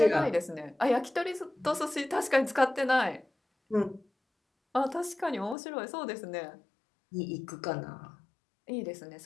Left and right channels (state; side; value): drops out; right; at 5.6 s